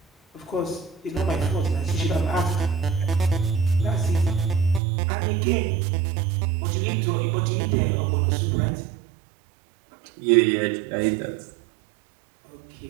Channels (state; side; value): drops out; left; at 4.8 s